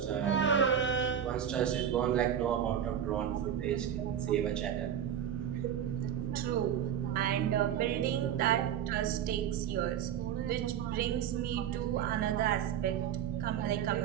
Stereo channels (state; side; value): quieter; left; 9.3 dB